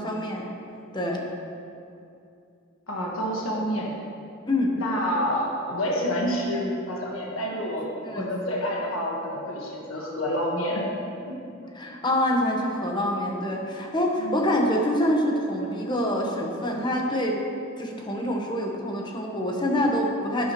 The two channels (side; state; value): both; normal; correlation 0.33